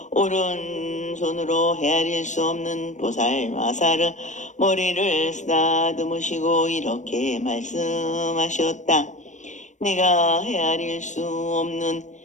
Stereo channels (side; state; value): right; late; 0.35 ms